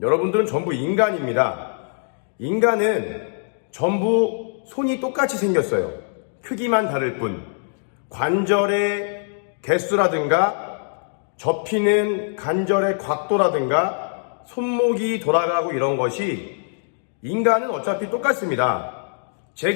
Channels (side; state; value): right; silent; digital silence